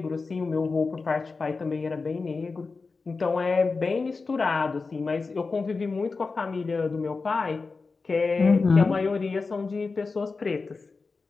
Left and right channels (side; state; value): right; quieter; 4.2 dB